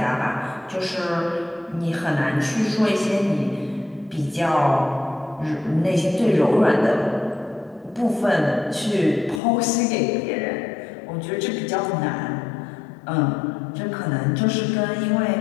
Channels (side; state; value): right; drops out; at 9.4 s